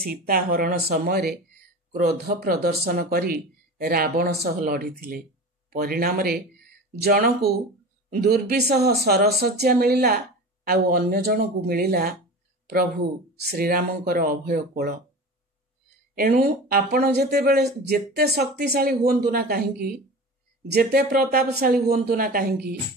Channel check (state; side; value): normal; both; correlation 0.33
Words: ହରଣ ସମୟରେ କ୍ରୋଧ ପ୍ରଦର୍ଶନ କରି ରାବଣ ସହ ଲଢ଼ିଥିଲେ। ପରିଣାମରେ ଜଣକୁ ଦୁର୍ବିସହ ସରଶଯ୍ୟା ମିଳିଲା, ଆଉ ଅନ୍ୟ ଜଣକୁ ମିଳିଲା ପ୍ରଭୁ ଶ୍ରୀରାମଙ୍କର ଅଭୟ କୋଳ। ଏଣୁ ଆପଣ ଯେତେ ଶକ୍ତିଶାଳୀ ହୁଅନ୍ତୁ ନା କାହିଁକି, ଯେତେ ପ୍ରତାପଶାଳୀ ହୁଅନ୍ତୁ ନା କାହିଁକି,